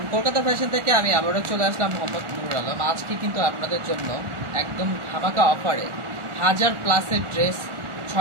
কলকাতা ফ্যাশন থেকে আমি আবারও চলে আসলাম, মোহাম্মদ নুরুল আলম। আজকে কিন্তু আপনাদের জন্য একদম ধামাকা অফারে 1000+ ড্রেস,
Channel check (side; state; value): left; late; 1.4 ms